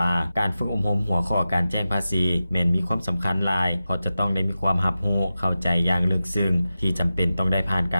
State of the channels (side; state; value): both; inverted; correlation -0.93